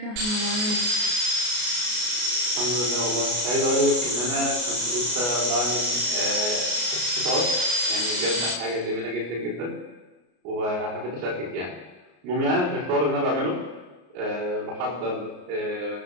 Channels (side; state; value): left; late; 33 ms